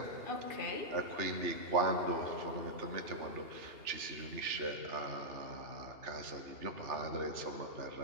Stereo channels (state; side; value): late; left; 2.8 ms